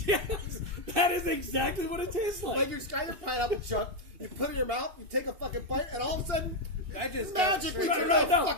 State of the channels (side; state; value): left; late; 2.6 ms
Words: that is exactly what it tastes like. Like you just got your pineapple chunk, you put it in your mouth, you take a fucking bite, and all of a sudden, I just magically got turned straight- into a